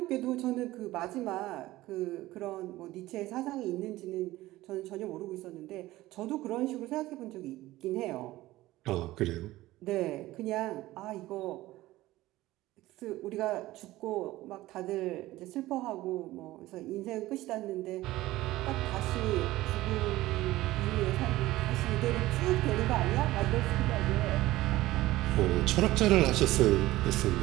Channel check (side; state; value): left; quieter; 17.1 dB